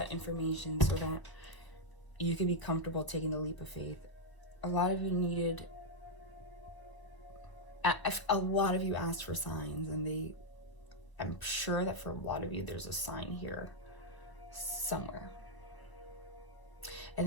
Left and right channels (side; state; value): right; late; 1.0 ms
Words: information so that you could be comfortable taking the leap of faith. A lot of you needed, a lot of you asked for signs, and I'm sure that for a lot of you there's a sign here somewhere.